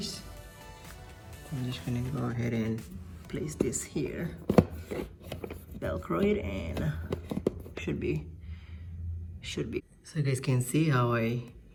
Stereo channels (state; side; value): identical; both; correlation 1.00